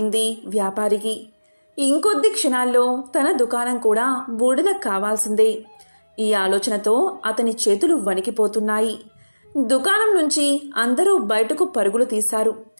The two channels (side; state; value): both; inverted; correlation -1.00